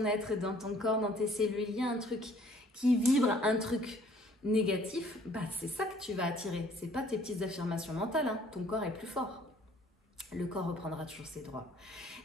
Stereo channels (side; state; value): both; normal; correlation 0.58